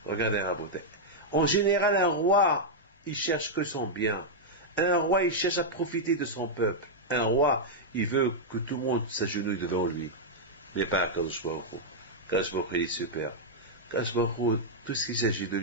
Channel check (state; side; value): normal; both; correlation -0.05